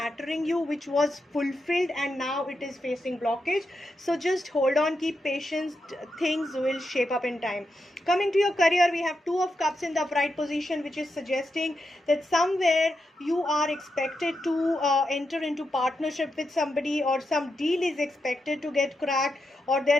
you, which was fulfilled and now it is facing blockage. So just hold on, keep patience. Things will shape up in time. Coming to your career, we have Two of Cups in the upright position, which is suggesting that somewhere you are expected to enter into partnership with somebody, or some deal is expected to get cracked, or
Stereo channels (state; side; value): normal; both; correlation 0.86